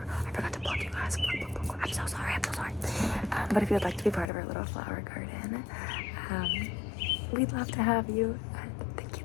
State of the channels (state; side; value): drops out; right; at 4.3 s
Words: I forgot to plug you guys. I'm so sorry. But if you'd like to be part of our little flower garden, we'd love to have you. Thank